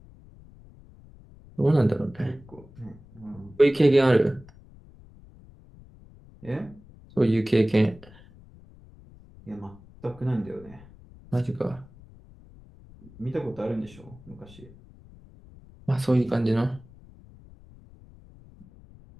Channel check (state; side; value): noise; left; rumble, 23 dB below the sound